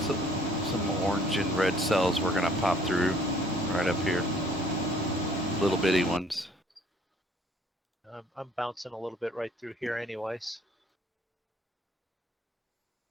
orange and red cells we're gonna pop through right up here. Little bitty ones. I'm bouncing a little bit right through here anyways.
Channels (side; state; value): both; normal; correlation 0.58